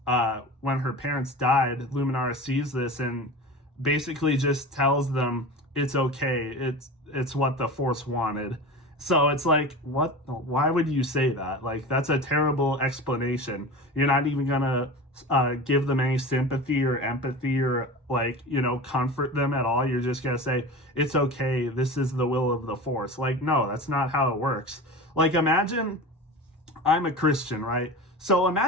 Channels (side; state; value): both; normal; correlation 0.31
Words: died, Luminara sees this and basically just tells them it's okay. It's what the Force wanted. So it's like, what? Why would you say that? Like, that's a terrible explanation. You're not even gonna give them any sympathy or empathy or comfort them at all. You're just gonna say it's okay. This is the will of the Force. Like, no, that's not how it works. Like, imagine I'm a Christian, right? So